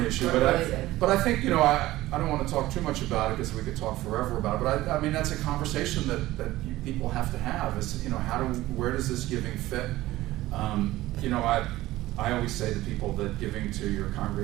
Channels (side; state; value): left; quieter; 16.8 dB